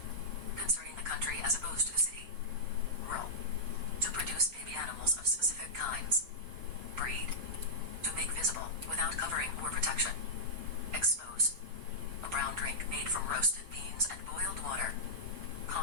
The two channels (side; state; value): left; late; 6.0 ms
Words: Concerning the country as opposed to the city. Rural. To produce baby animals of specific kinds. Breed. To make visible without covering or protection. Expose. A brown drink made from roasted beans and boiled water.